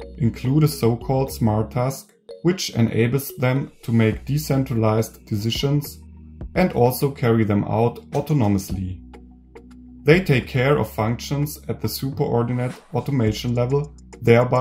include a so-called Smart Task, which enables them to make decentralized decisions and also carry them out autonomously. They take care of functions at the superordinate automation level,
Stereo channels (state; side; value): identical; both; correlation 1.00